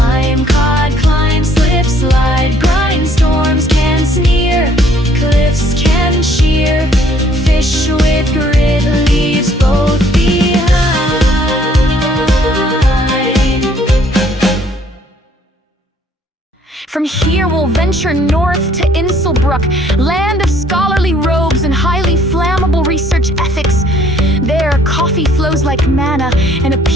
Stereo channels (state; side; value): normal; both; correlation 0.62